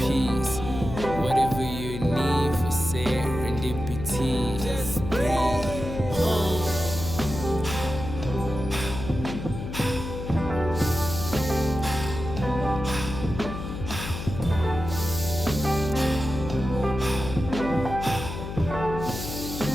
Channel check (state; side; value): noise; left; hum, 7 dB below the sound